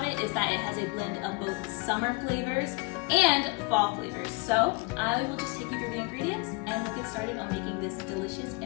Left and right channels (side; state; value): right; quieter; 27.5 dB